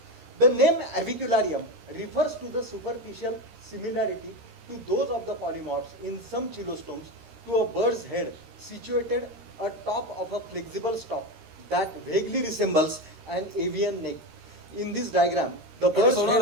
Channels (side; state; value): left; late; 13 ms